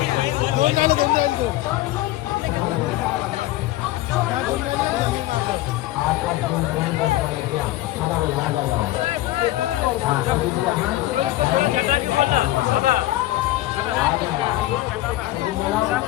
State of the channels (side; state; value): right; quieter; 16.0 dB